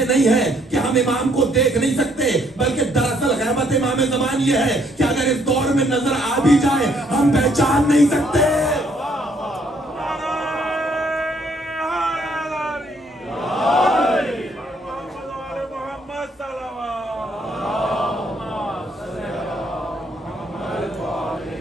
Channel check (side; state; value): both; normal; correlation 0.68